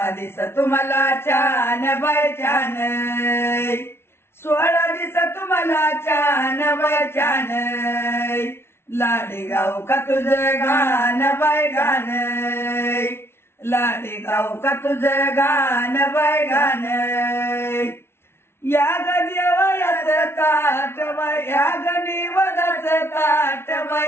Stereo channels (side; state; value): right; late; 0.12 ms